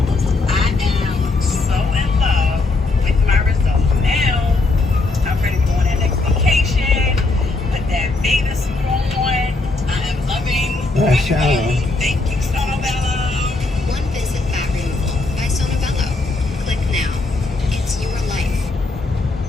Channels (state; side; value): quieter; right; 3.4 dB